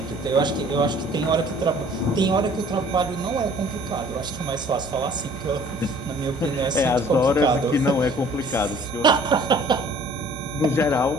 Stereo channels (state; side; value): normal; both; correlation 0.53